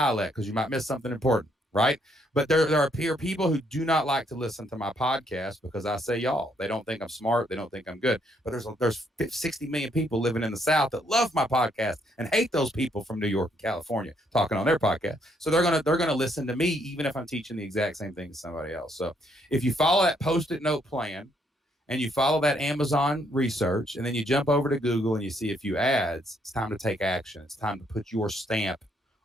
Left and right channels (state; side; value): normal; both; correlation 0.71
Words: because you might miss something important, right? But there are people who do not like to listen to my podcast because I say y'all. They don't think I'm smart. They don't think I'm good. But there's 60 million people living in the South that love my podcast and hate those people from New York and California talking on their podcast. So they're gonna listen to me even if I'm teaching the exact same thing to somebody else. So if you follow that Post-it note plan and you follow that Amazon research and then you jump over to Google and you see a few ads, it's time to take action. It's time to put your stamp